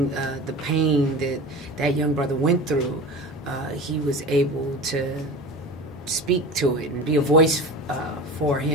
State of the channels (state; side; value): normal; both; correlation 0.33